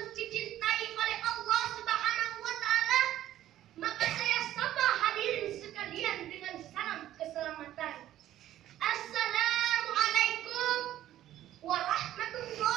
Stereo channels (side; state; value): left; quieter; 12.9 dB